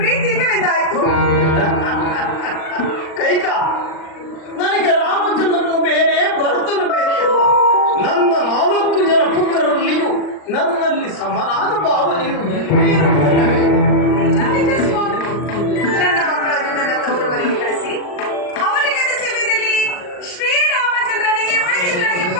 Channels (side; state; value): right; late; 39 ms